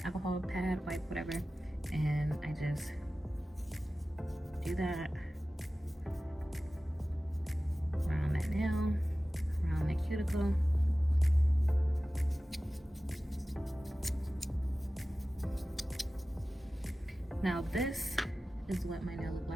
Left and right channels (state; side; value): normal; both; correlation 0.96